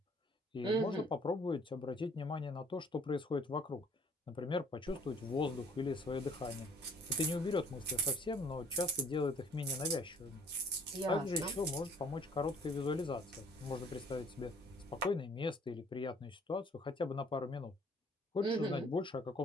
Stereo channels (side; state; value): both; normal; correlation 0.57